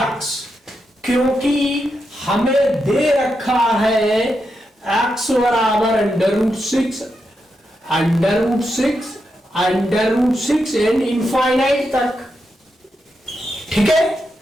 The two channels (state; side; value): normal; both; correlation 0.85